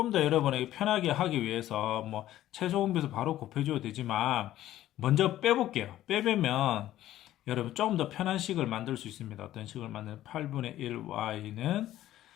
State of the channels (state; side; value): quieter; right; 13.6 dB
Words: 더 여러분에게 편하게 하기 위해서 뭐 최소공비에서 바로 곱해줘도 되지만 먼저 빼볼게요. 빼면 여러분 조금 더 편한 식을 만들 수 있습니다. 어떤 식을 만드는 8분의 1y는